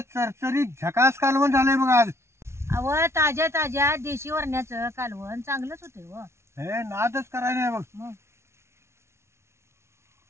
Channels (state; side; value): late; left; 0.13 ms